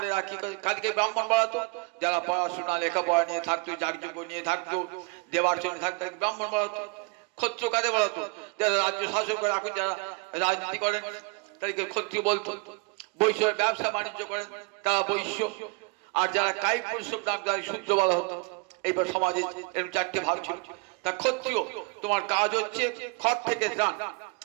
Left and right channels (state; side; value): quieter; left; 31.1 dB